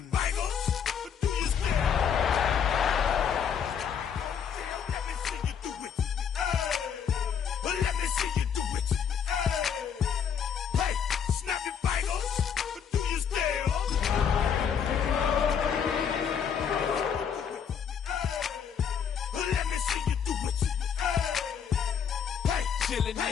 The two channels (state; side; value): quieter; right; 7.6 dB